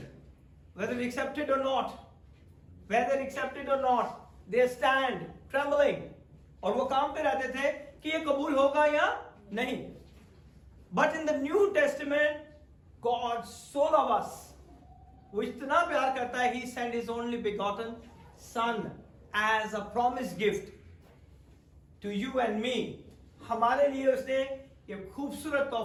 whether they accept it or not. Whether accepted or not, they stand trembling. और वो काम पे रहते थे कि ये कबूल होगा या नहीं. But in the New Testament, God so loves us. वो इतना प्यार करता है, He sent His only begotten Son as a promised gift to you and me. हमारे लिए उसने ये खूबसूरत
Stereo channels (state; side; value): identical; both; correlation 1.00